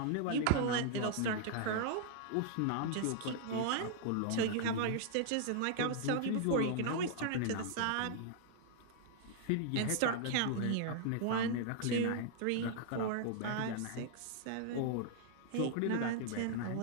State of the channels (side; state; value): both; different; correlation -0.01